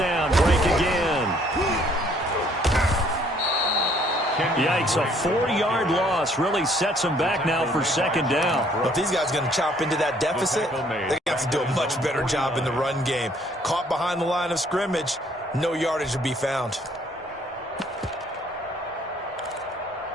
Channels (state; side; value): normal; both; correlation 0.63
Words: break again. Yikes, a 4-yard loss really sets them back now for 2nd down. Well, if these guys are going to chop into that deficit, they're going to have to do a much better job in the run game. Caught behind the line of scrimmage, no yardage to be found.